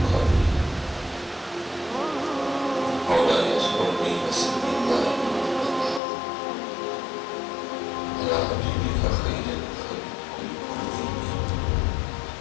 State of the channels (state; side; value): drops out; right; at 6.0 s